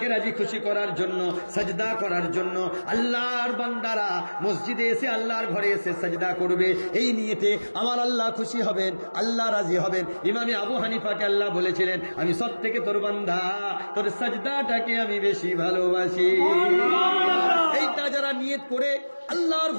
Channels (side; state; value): both; inverted; correlation -1.00